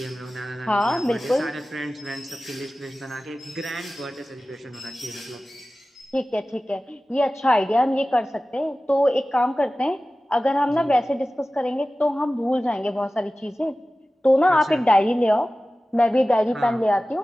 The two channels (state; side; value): normal; both; correlation 0.96